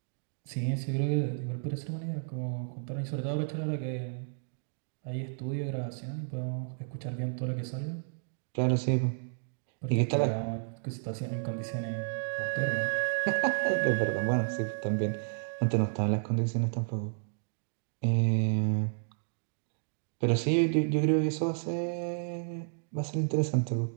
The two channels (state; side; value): silent; left; digital silence